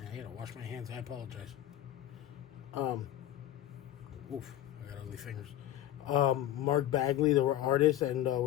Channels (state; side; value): quieter; right; 12.8 dB